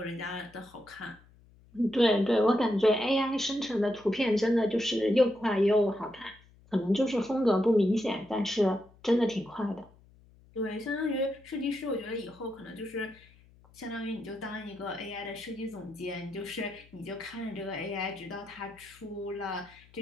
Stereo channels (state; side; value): noise; left; hum, 27 dB below the sound